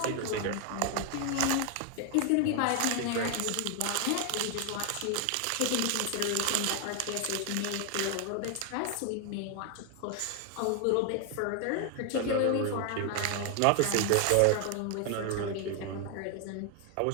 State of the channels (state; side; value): different; both; correlation 0.00